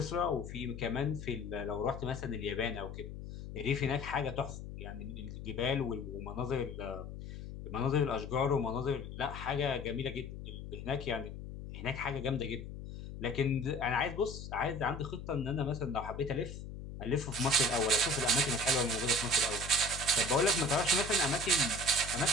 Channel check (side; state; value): left; noise; hum, 10 dB below the sound